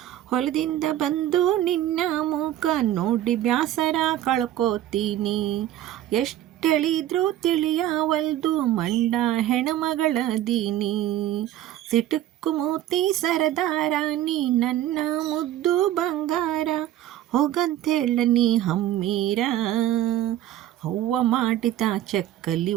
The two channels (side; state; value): left; quieter; 12.9 dB